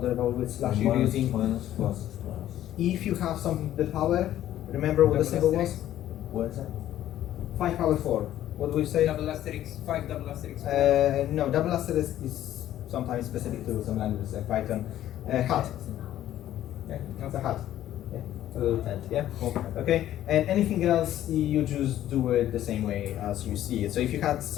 about which slash you're Minus, using. minus, plus. If you have something to the power, remember what the symbol was? What is that? 5 power 4. What do we say? Double asterisk, 5 double asterisk. No, double asterisk is sometimes specific to some languages like Python. Hat. Yeah, that's a hat. Yeah, a little tent. Yeah. Okay. And anything else, you just do it the same way as you see it. So if you had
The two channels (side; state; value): right; quieter; 12.6 dB